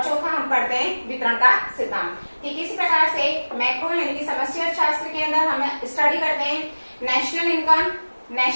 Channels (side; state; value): both; inverted; correlation -1.00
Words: चौथा हम पढ़ते हैं वितरण का सिद्धांत। ठीक इसी प्रकार से मैक्रो यानी कि समष्टि अर्थशास्त्र के अंदर हम स्टडी करते हैं national income,